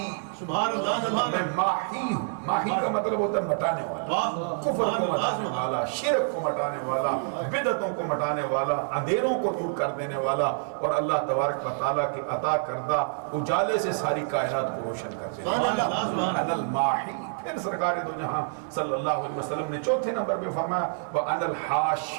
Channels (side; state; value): left; silent; 60 dB below the other